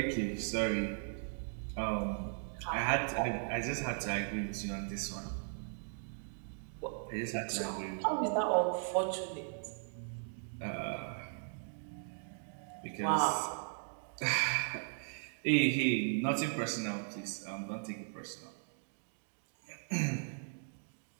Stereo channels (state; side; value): silent; left; digital silence